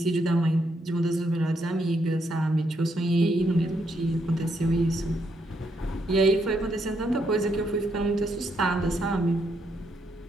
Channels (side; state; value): both; normal; correlation 0.76